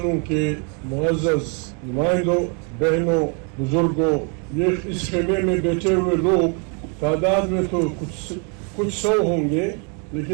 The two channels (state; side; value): quieter; left; 37.1 dB